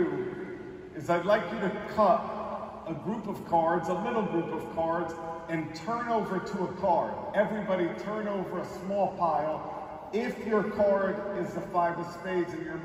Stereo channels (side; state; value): both; identical; correlation 1.00